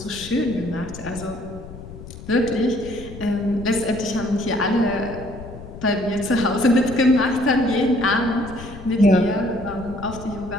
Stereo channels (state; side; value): noise; left; rumble, 14 dB below the sound